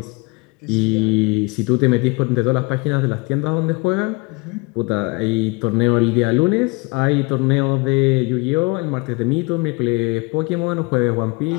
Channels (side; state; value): right; quieter; 27.2 dB